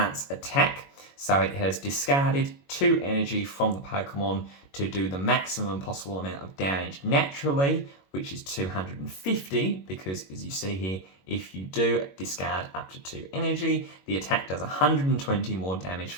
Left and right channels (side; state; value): right; late; 21 ms